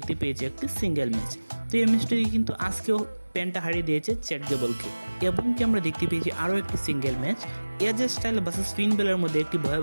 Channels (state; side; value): inverted; both; correlation -1.00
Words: পেয়েছি একটি সিঙ্গেল ম্যাচ। তো এই ম্যাচটি কিন্তু আজকেও পেন্টা হারিয়ে দিয়েছে চ্যাট গেবলকে এবং কি আমরা দেখতে পেয়েছি আরও একটি সিঙ্গেল ম্যাচ এজে স্টাইল ভার্সেস ফিন বেলার মধ্যে একটি